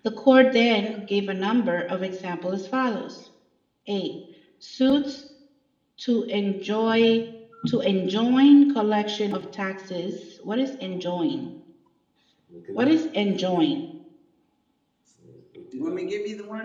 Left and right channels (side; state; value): both; identical; correlation 1.00